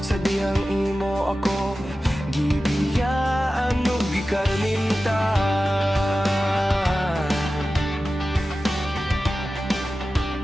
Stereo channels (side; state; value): both; normal; correlation 0.94